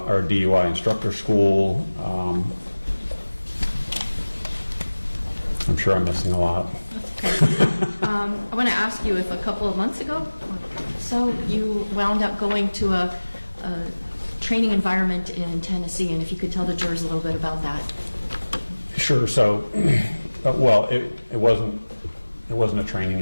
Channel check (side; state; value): both; inverted; correlation -1.00